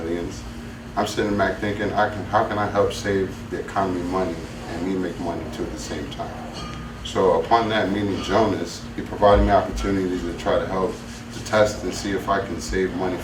I'm sitting back thinking, how can I help save the economy money and me make money too at the same time? So upon that meeting Jonas, he provided me opportunities to try to help to test and see if I can save money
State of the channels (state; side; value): identical; both; correlation 1.00